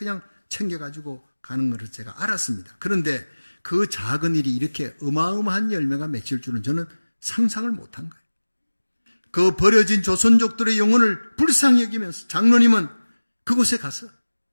챙겨가지고 가는 것을 제가 알았습니다. 그런데 그 작은 일이 이렇게 어마어마한 열매가 맺힐 줄은 저는 상상을 못한 거예요. 그 버려진 조선족들의 영혼을 불쌍히 여기면서 장로님은 그곳에 가서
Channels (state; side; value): inverted; both; correlation -1.00